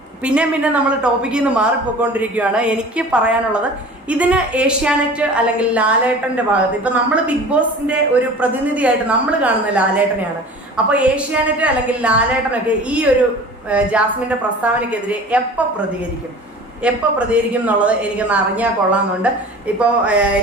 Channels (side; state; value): both; normal; correlation 0.41